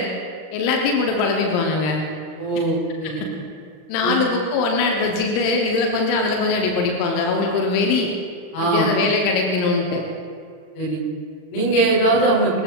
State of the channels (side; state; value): right; late; 39 ms